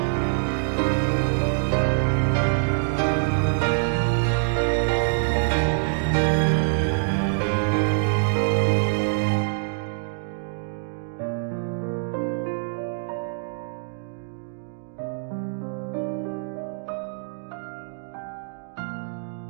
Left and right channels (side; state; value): left; silent; digital silence